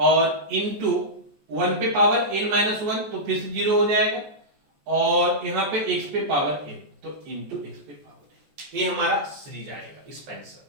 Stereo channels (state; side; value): late; left; 14 ms